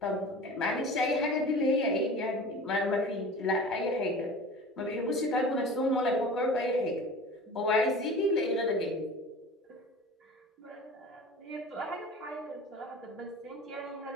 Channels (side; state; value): both; normal; correlation 0.38